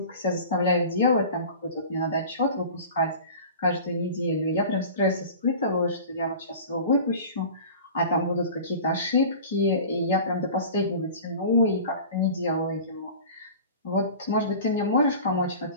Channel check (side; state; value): both; inverted; correlation -0.39